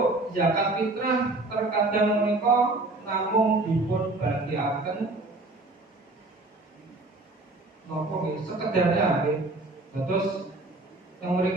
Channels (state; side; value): quieter; left; 3.0 dB